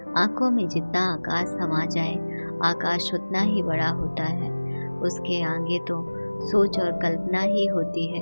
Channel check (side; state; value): both; inverted; correlation -1.00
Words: आंखों में जितना आकाश समा जाए, आकाश उतना ही बड़ा होता है। उसके आगे तो सोच और कल्पना ही होती